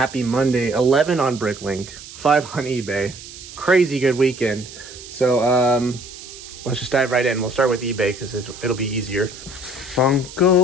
Monday. 11 on Bricklink, 5 on eBay. Crazy good weekend. So let's just dive right in. We'll start with eBay because it'll be easier.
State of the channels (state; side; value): noise; right; hiss, 15 dB below the sound